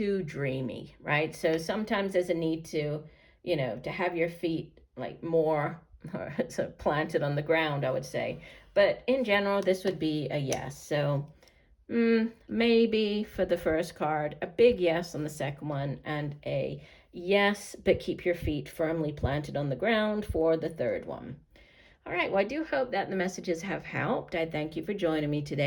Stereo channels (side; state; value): both; identical; correlation 1.00